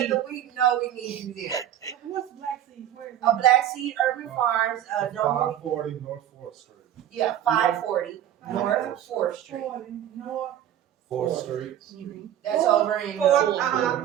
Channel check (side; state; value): left; quieter; 11.2 dB